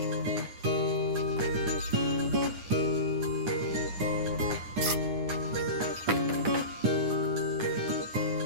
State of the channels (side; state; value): left; late; 9.8 ms